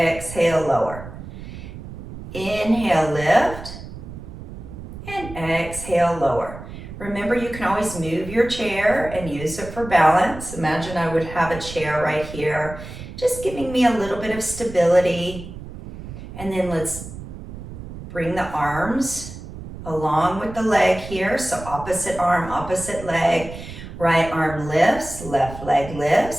lower. Inhale, lift, and exhale, lower. Remember, you can always move your chair and use it for balance. Imagine I would have a chair right here, just giving me a little bit of stability. And then let's bring the arms along with the leg here. So opposite arm, opposite leg. Right arm lifts, left leg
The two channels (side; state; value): right; noise; rumble, 12 dB below the sound